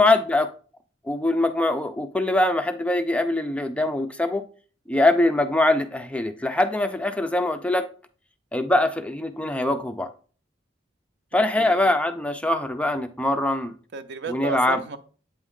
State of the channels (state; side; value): normal; both; correlation 0.78